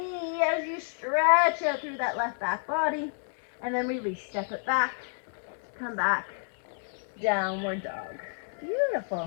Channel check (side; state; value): right; silent; 58 dB below the other